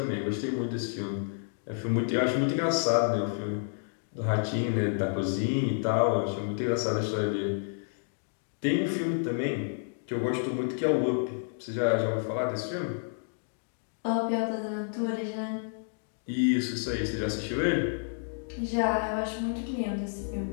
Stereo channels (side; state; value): right; silent; digital silence